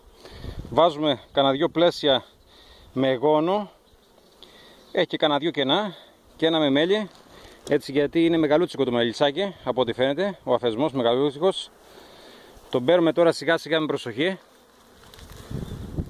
Βάζουμε κανένα δυο πλαίσια με γόνο, έχει και κανένα δυο κενά και ένα με μέλι, έτσι, γιατί είναι μεγαλούτσικο το μελισσάκι από ό,τι φαίνεται, ο αφισμός μεγαλούτσικος. Τον παίρνουμε τώρα σιγά σιγά με προσοχή.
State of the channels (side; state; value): both; identical; correlation 1.00